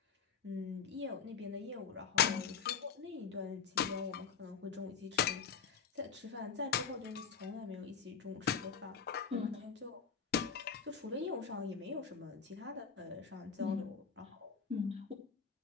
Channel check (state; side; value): quieter; right; 6.6 dB